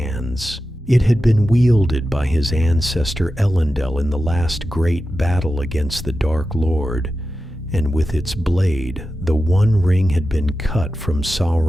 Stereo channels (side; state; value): both; normal; correlation 0.92